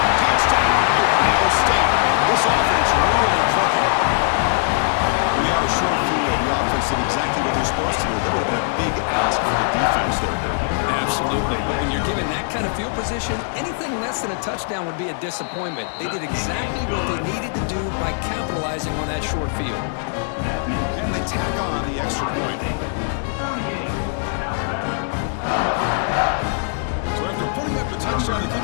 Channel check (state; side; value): silent; right; digital silence